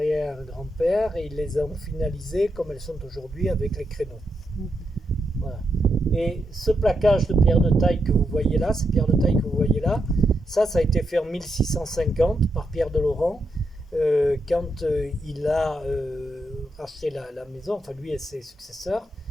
et ils les ont finalisées comme elles sont aujourd'hui avec les créneaux. Voilà. Et ce plaquage de pierre de taille que vous voyez là, ces pierres de taille que vous voyez là, ça a été fait en 1650 par Pierre de Laurent, quand il a racheté la maison, enfin lui et ses successeurs.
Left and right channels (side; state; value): both; normal; correlation 0.82